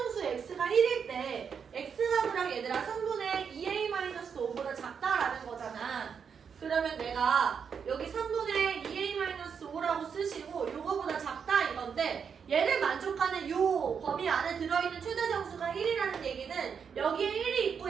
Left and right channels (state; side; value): quieter; left; 6.7 dB